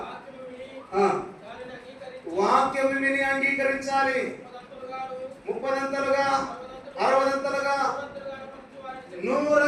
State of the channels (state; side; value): identical; both; correlation 1.00